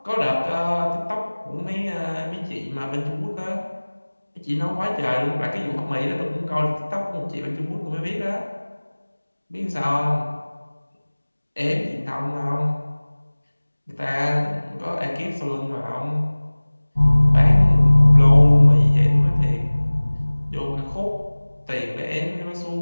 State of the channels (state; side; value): inverted; both; correlation -1.00